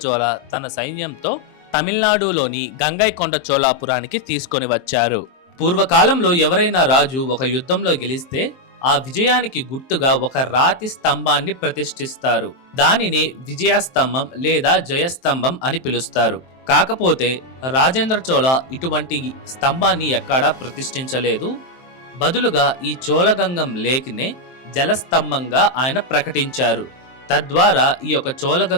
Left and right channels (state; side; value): late; right; 23 ms